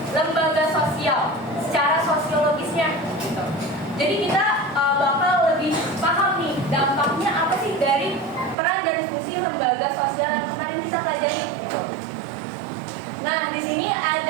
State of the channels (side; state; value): left; drops out; at 8.6 s